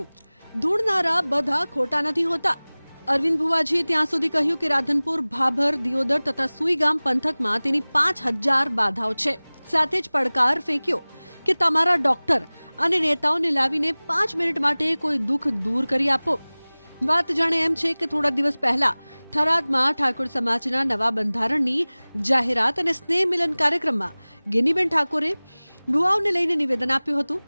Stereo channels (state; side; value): inverted; both; correlation -1.00